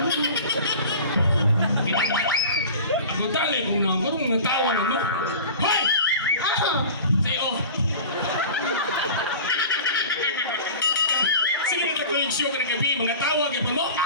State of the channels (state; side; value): inverted; both; correlation -0.38